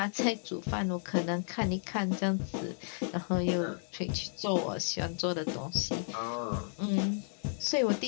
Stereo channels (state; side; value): silent; right; 56 dB below the other